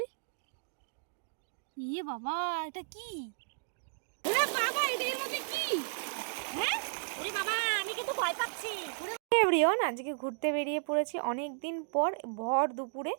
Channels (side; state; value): left; silent; digital silence